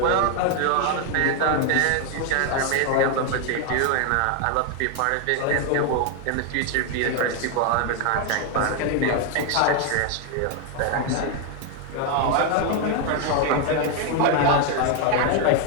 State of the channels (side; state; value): both; different; correlation 0.01